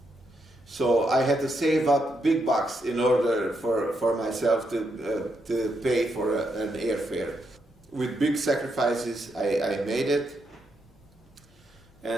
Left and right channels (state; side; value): noise; left; hum, 30 dB below the sound